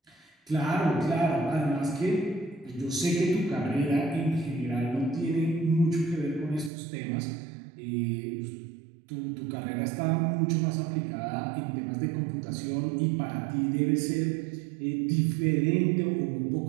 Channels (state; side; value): drops out; left; at 6.7 s